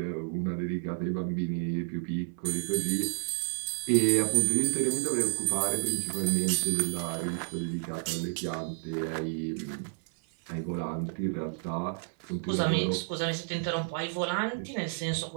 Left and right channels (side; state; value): left; silent; 57 dB below the other